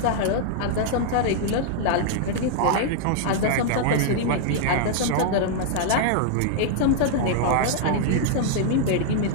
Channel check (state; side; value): different; both; correlation -0.01